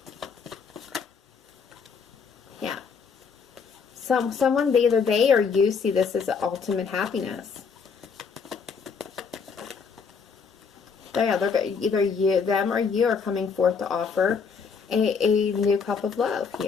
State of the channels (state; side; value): quieter; right; 5.7 dB